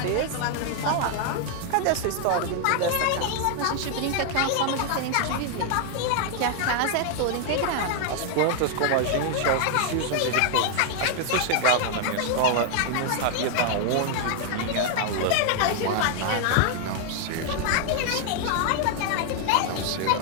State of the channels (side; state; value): both; different; correlation 0.00